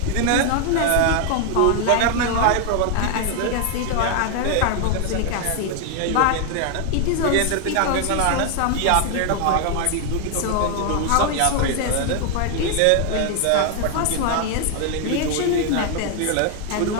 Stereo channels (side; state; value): both; different; correlation 0.00